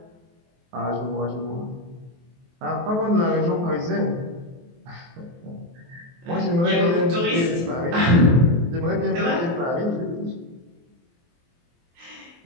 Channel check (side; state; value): left; late; 23 ms